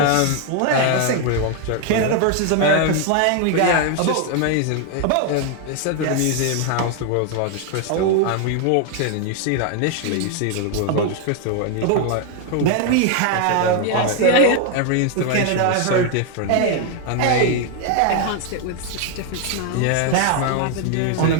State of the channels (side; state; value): both; different; correlation 0.00